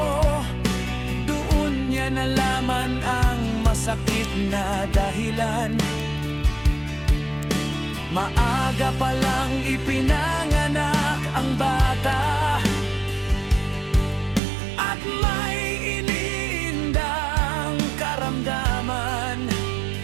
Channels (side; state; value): left; drops out; at 14.4 s